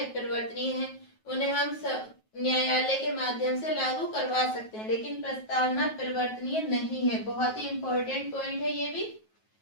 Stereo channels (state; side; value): late; right; 9.3 ms